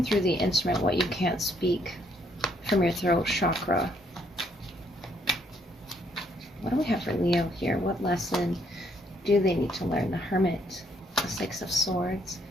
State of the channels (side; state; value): both; normal; correlation 0.69